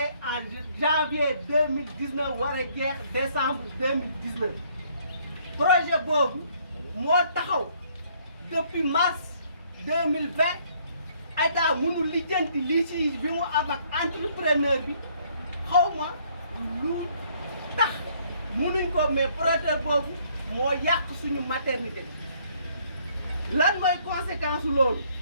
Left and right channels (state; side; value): inverted; both; correlation -0.64